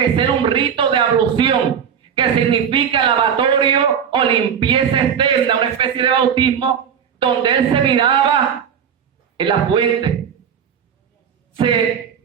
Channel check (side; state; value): left; quieter; 7.8 dB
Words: ser un rito de ablución, que significa lavatorio o limpieza externa, una especie de bautismo, donde él se miraba en la fuente.